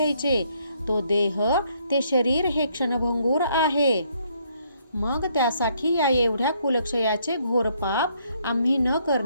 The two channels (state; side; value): inverted; both; correlation -0.70